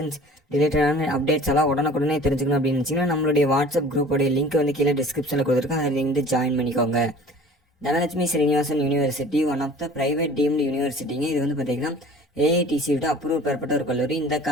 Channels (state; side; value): normal; both; correlation 0.46